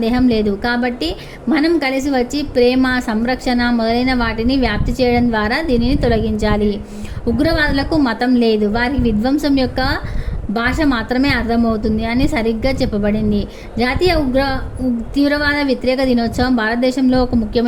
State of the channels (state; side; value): identical; both; correlation 1.00